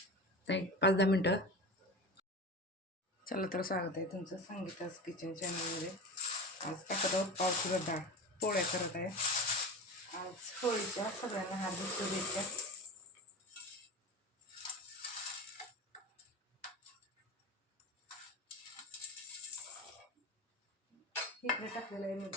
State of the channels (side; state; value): both; normal; correlation 0.29